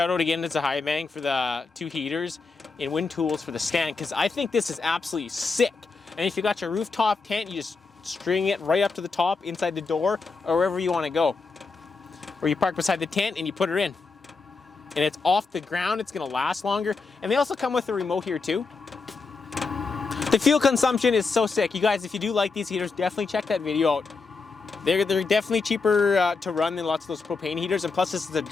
out again to ZHIBANG for the two heaters and wind tools for the stand, because I think this is absolutely sick. And if you got your rooftop tent, you just string it right up to the top inside the door or wherever you want to go. Or you park beside the tent and you put her in. And it's off the ground, it's gonna last longer. And they also come with a remote here too. The fuel consumption is so sick. You guys, if you do like these heaters, definitely check that video out. They're definitely cheaper to run than lots of those propane heaters. And plus this is a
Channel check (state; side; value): quieter; right; 4.3 dB